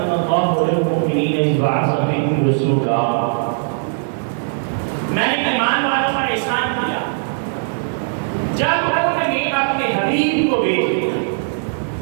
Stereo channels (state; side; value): silent; left; digital silence